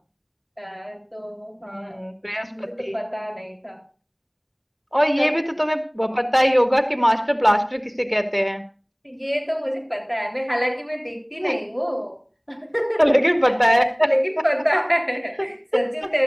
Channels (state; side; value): identical; both; correlation 1.00